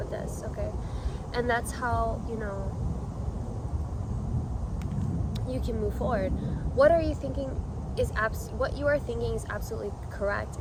this, okay? And that's how, you can move forward. What you are thinking is absolutely correct.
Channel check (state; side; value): identical; both; correlation 1.00